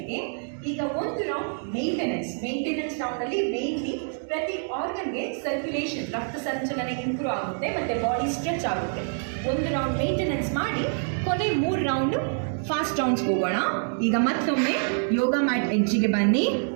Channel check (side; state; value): left; silent; 61 dB below the other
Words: ಈಗ 1 ರೌಂಡ್ ಮೇಂಟೆನೆನ್ಸ್ ರೌಂಡಲ್ಲಿ ಮೇನ್ಲಿ ಪ್ರತಿ ಆರ್ಗನ್ಗೆ ಸರ್ಕ್ಯುಲೇಷನ್, ರಕ್ತ ಸಂಚಲನ ಇಂಪ್ರೂವ್ ಆಗುತ್ತೆ ಮತ್ತು ಬಾಡಿ ಸ್ಟ್ರೆಚ್ ಆಗುತ್ತೆ. 1 ರೌಂಡ್ ಮೇಂಟೆನೆನ್ಸ್ ಮಾಡಿ ಕೊನೆ 3 ರೌಂಡು ಫಾಸ್ಟ್ ರೌಂಡ್ಸ್ಗೆ ಹೋಗೋಣ. ಈಗ ಮತ್ತೊಮ್ಮೆ ಯೋಗ ಮ್ಯಾಟ್ ಎಡ್ಜಿಗೆ ಬನ್ನಿ.